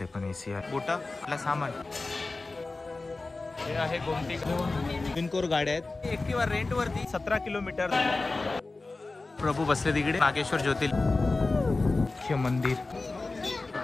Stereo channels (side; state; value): right; quieter; 3.4 dB